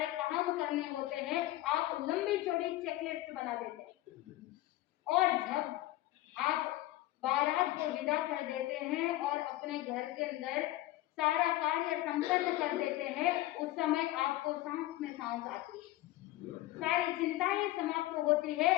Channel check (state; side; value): quieter; right; 16.5 dB